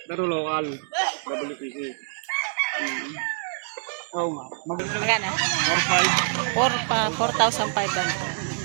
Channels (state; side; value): silent; left; 61 dB below the other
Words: pero local. WPC. Oo nga. Magkano? 4,500.